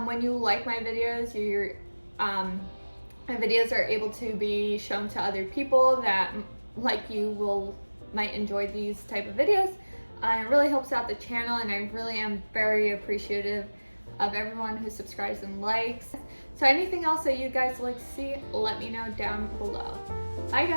When you like my videos, my videos are able to be shown to other people that, like you, might enjoy these type of videos. It really helps out the channel, and I really am very appreciative of everyone who subscribes and likes. So anything else that you guys like to see, let me know down below. Bye,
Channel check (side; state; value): both; inverted; correlation -1.00